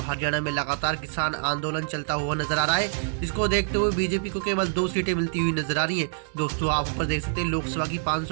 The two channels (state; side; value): silent; left; digital silence